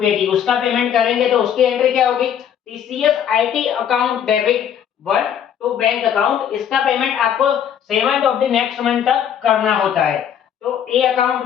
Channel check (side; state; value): right; quieter; 9.0 dB